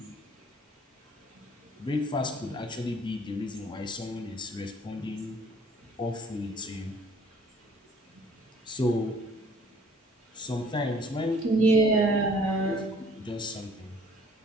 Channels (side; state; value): both; normal; correlation 0.56